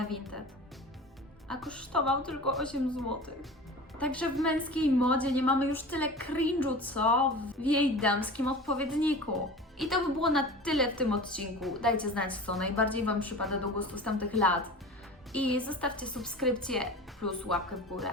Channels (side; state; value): both; normal; correlation 0.36